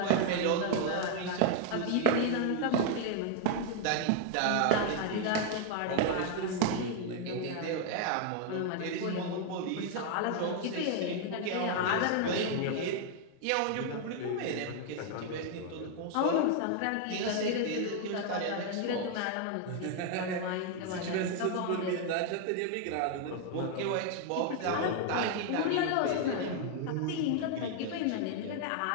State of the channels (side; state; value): both; different; correlation 0.00